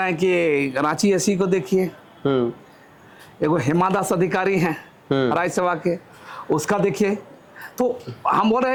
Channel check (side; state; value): both; identical; correlation 1.00